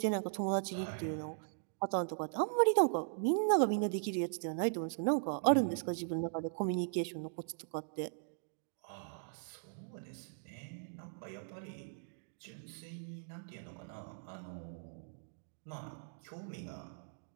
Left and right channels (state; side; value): silent; left; digital silence